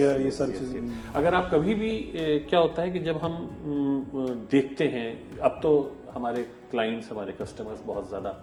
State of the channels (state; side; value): identical; both; correlation 1.00